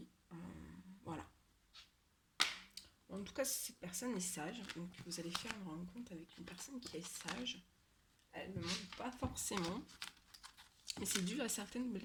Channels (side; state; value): both; identical; correlation 1.00